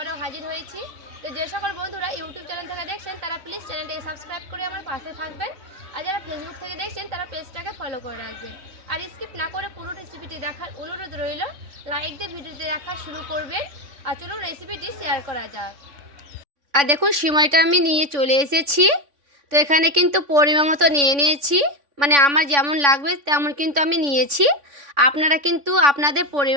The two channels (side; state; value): left; late; 3.5 ms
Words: হাজির হয়েছি। তো যে সকল বন্ধুরা ইউটিউব চ্যানেল থেকে দেখছেন তারা প্লিজ চ্যানেলটাকে সাবস্ক্রাইব করে আমার পাশে থাকবেন, আর যারা ফেসবুক থেকে দেখছেন তারা পেজটাকে ফলো করে রাখবেন। আর স্কিপ না করে পুরো রেসিপিটি দেখার অনুরোধ রইল। লাইক দিয়ে ভিডিওটি দেখা শুরু করবেন, আর চলুন রেসিপিটি শেয়ার করা যাক। আর দেখুন সিমইটা আমি নিয়ে চলে এসেছি। তো এখানে কিন্তু পরিমাণ মতো নিয়ে নিয়েছি, মানে আমার যেমন লাগবে তেমন কিন্তু আমি নিয়েছি। আপনারা কিন্তু আপনাদের